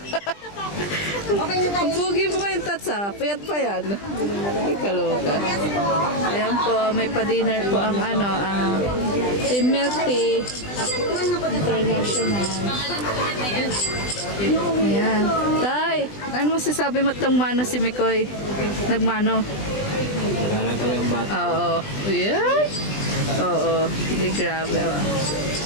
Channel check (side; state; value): right; late; 20 ms